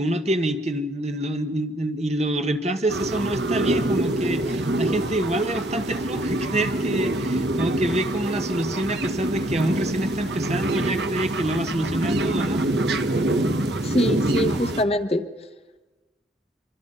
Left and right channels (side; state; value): both; normal; correlation 0.65